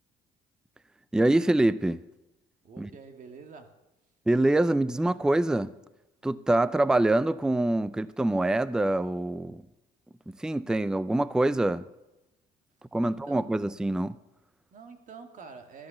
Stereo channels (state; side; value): normal; both; correlation 0.97